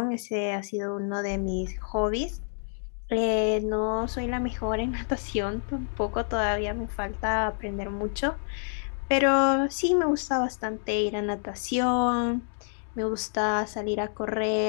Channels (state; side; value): silent; right; digital silence